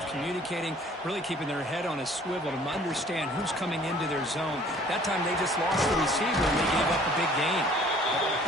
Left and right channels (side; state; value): both; normal; correlation 0.54